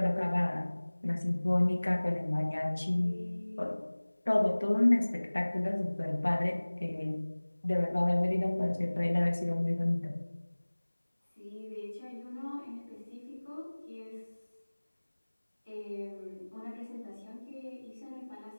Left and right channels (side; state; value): both; inverted; correlation -1.00